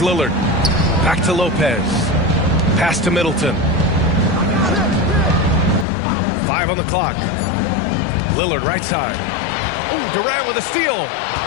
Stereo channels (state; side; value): drops out; right; at 5.9 s